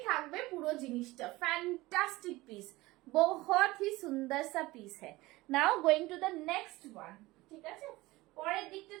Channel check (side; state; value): left; quieter; 19.8 dB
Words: থাকবে পুরো জিনিসটা, ফ্যান্টাস্টিক পিস, বহুত হি সুন্দর সা পিস হ্যায়। Now going to the next one. ঠিক আছে, পরের দিকটা